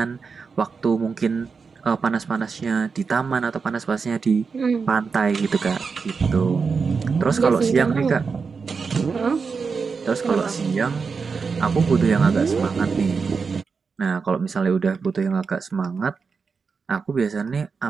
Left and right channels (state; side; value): quieter; left; 5.2 dB